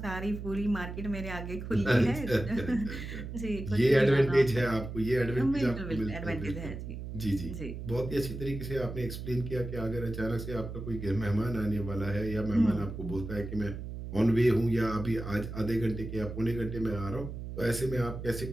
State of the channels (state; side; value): noise; right; hum, 8 dB below the sound